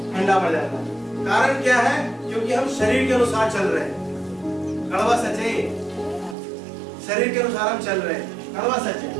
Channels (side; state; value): left; drops out; at 6.4 s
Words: ठंडा पड़ जाता है। कारण क्या है? क्योंकि हम शरीर के अनुसार चल रहे हैं। कड़वा सच है, शरीर के अनुसार हम चल रहे हैं, कड़वा सच